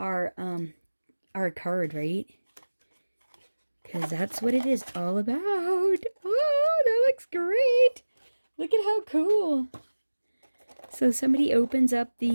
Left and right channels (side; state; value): both; inverted; correlation -1.00